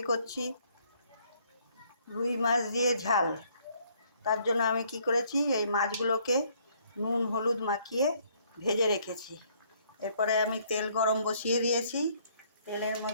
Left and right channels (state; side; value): inverted; both; correlation -0.65